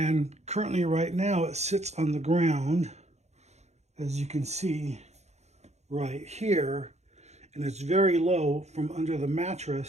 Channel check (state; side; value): late; left; 0.32 ms